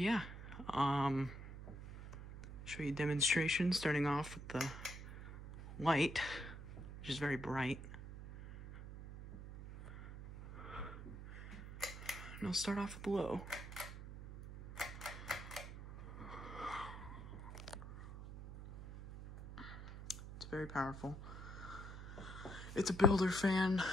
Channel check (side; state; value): right; noise; hum, 10 dB below the sound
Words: show you a demonstration starting off with the light, which is very bright. And I'll start off with low. It's very powerful. It's a builder fan,